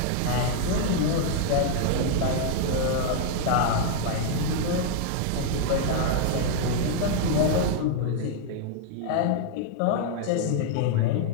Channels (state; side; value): different; both; correlation -0.01